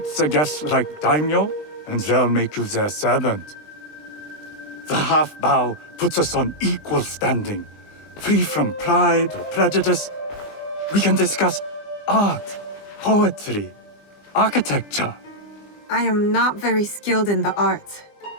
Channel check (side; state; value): right; late; 20 ms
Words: the guests like daimyo, and they'll make you their servant. The half bow puts us on equal standing, free from pride or prejudice. We can discuss art, poetry, architecture. I am not very skilled in the arts.